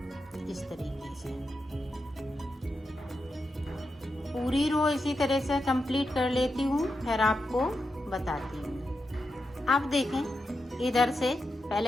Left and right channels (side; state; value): both; normal; correlation 0.87